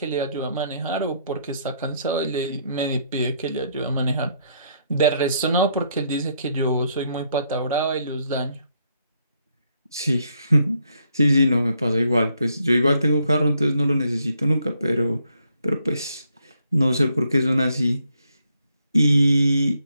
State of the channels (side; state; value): both; inverted; correlation -0.72